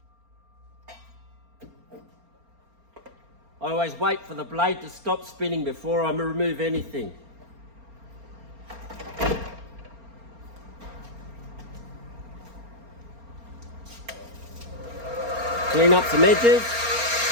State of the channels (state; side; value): late; left; 4.3 ms